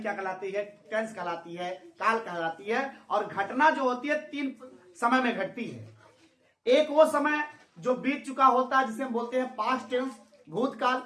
क्या कहलाती है? टेंस कहलाती है, काल कहलाती है। और घटना जो होती है तीन समय में घटती है। एक वो समय जो बीत चुका होता है जिसे हम बोलते हैं पास्ट टेंस, भूतकाल।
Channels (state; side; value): identical; both; correlation 1.00